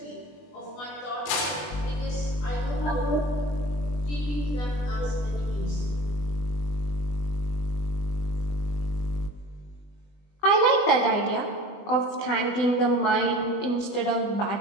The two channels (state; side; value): late; right; 20 ms